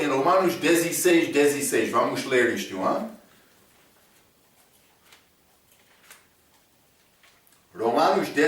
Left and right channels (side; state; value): both; identical; correlation 1.00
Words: Romanos 16, 16. Vamos ler isto, hein? Romanos